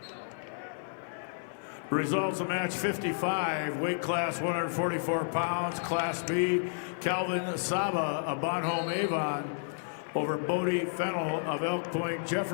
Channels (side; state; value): right; silent; 57 dB below the other